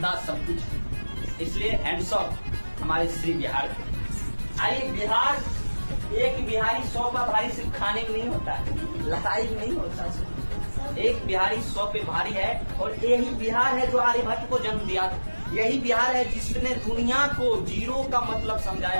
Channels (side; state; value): both; inverted; correlation -1.00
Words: सब कुछ। इसलिए हैंड्स ऑफ हमारे श्री बिहार। आइए, बिहार एक बिहारी 100 का भारी सिर्फ खाने में नहीं होता है, लड़ाई में नहीं होता। एक बिहारी 100 पे भारी है और यही बिहार है जो आर्यभट्ट को जन्म दिया था। यही बिहार है जिसने दुनिया को जीरो का मतलब